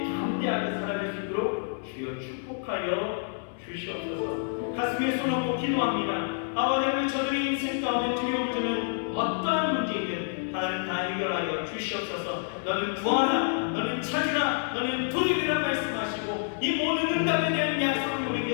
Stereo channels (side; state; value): right; silent; 59 dB below the other